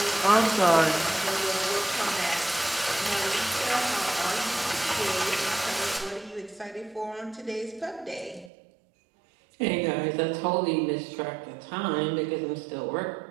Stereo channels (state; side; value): drops out; left; at 8.5 s